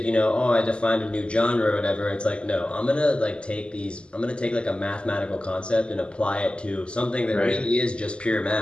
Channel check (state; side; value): late; right; 0.052 ms